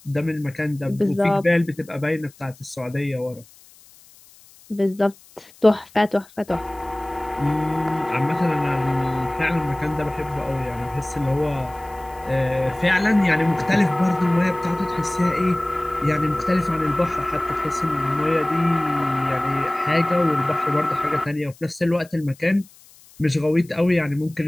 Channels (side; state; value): left; noise; hiss, 25 dB below the sound